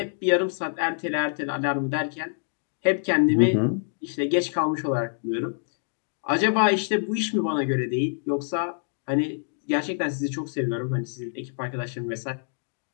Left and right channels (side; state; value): right; silent; digital silence